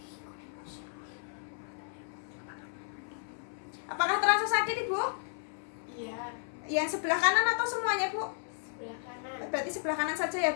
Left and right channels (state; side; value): silent; right; 55 dB below the other